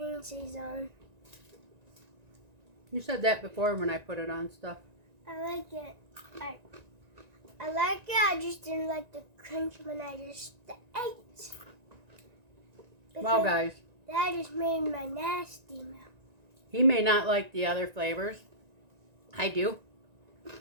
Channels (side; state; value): left; late; 1.9 ms